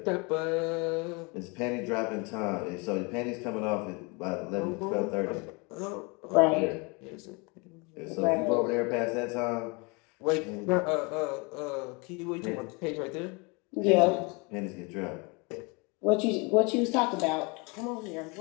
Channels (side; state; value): right; quieter; 29.7 dB